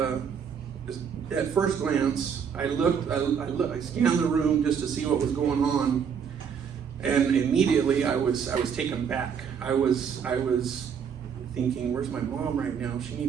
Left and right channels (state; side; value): quieter; left; 7.1 dB